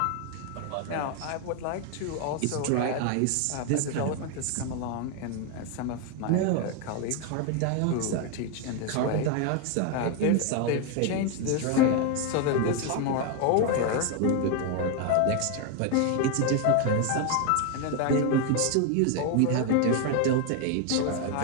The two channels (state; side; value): different; both; correlation 0.01